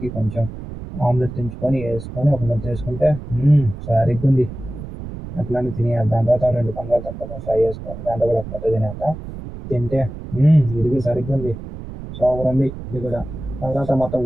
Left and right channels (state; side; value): noise; right; rumble, 11 dB below the sound